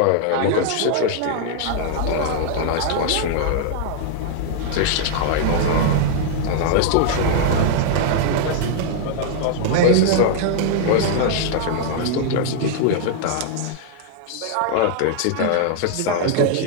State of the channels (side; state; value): both; different; correlation -0.01